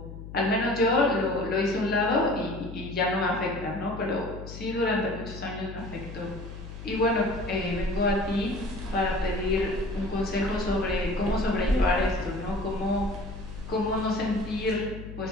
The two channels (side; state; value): left; noise; hum, 12 dB below the sound